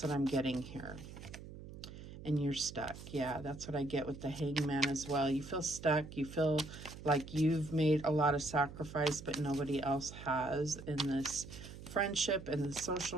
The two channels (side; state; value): right; noise; hum, 13 dB below the sound